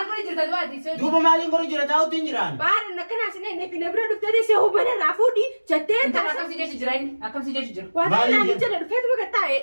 جرت دواتي دوبا مالين قرية جرا تاو تنجران Baari nakana sinee nefi na bira dhuftee deessee hubana raafudhi jettee أنت taasisaa. أكم سيجي جرين أكم سيجي جر Waan Maaliin naan jedhu? jala dhufeetu bakka taa'e.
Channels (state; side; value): inverted; both; correlation -1.00